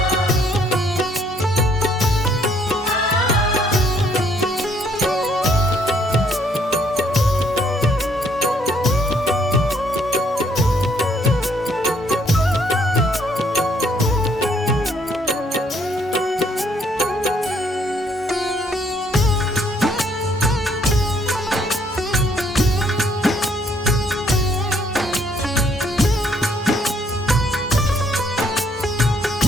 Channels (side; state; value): both; normal; correlation 0.67